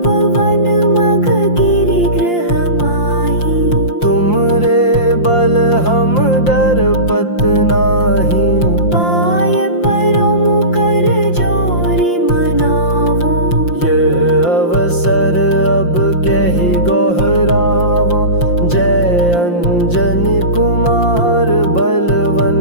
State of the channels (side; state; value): right; late; 5.7 ms